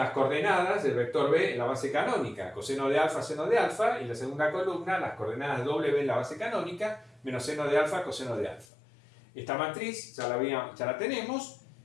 coordenadas del vector B en la base canónica, coseno de alfa, seno de alfa, y la segunda columna, las coordenadas W en la base canónica, menos seno de alfa, coseno de alfa. Esta matriz ya la tenemos,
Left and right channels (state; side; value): drops out; right; at 8.7 s